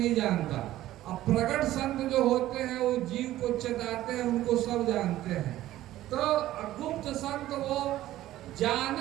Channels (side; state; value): left; quieter; 14.5 dB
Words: जानता। अब प्रकट संत जो होते हैं वो जीव को चेताते हैं, उनको सब जानते हैं। तो गुप्त संत वो